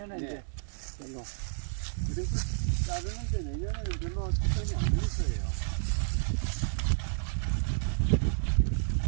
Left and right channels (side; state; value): left; silent; 57 dB below the other